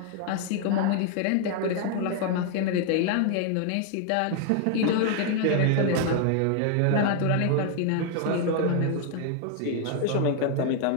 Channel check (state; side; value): different; both; correlation 0.00